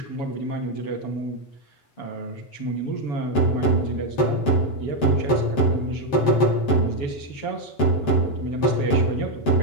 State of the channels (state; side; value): late; right; 7.5 ms